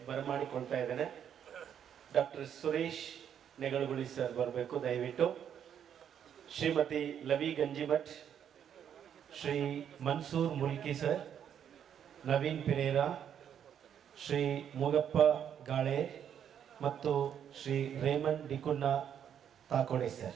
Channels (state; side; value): quieter; left; 8.9 dB